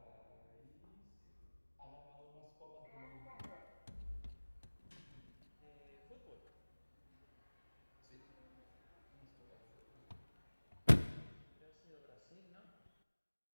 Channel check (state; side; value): inverted; both; correlation -1.00